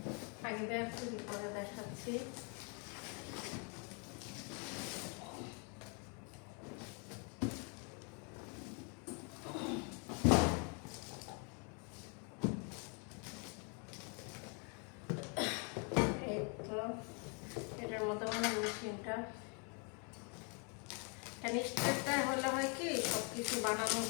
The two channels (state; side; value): quieter; right; 36.7 dB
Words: আগে বের করি পরে দেখাচ্ছি। এই তো এটার মধ্যে মানে মেশিনটা স্টেপটা হলে হয় কি সব কিছু বানানো